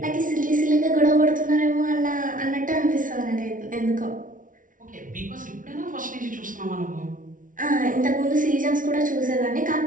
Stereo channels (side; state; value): left; late; 0.38 ms